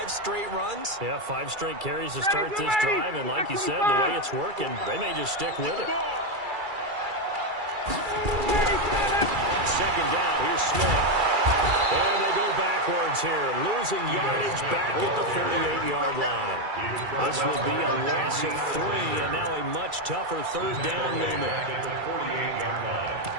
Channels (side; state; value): left; late; 2.3 ms